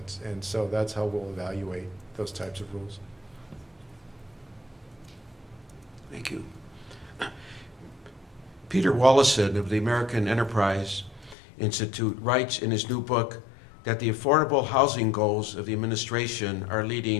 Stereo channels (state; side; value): drops out; right; at 11.4 s